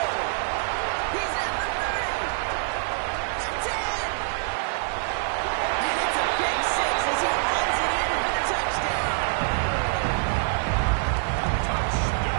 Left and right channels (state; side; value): silent; left; 61 dB below the other